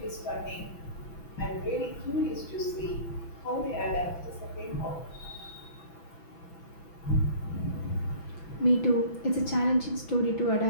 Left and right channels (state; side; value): late; right; 6.0 ms